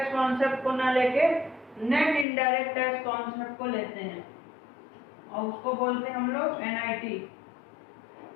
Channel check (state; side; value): drops out; right; at 2.2 s